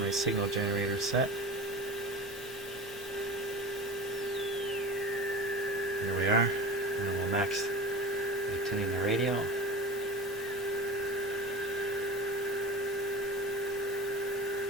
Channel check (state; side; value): normal; both; correlation 0.33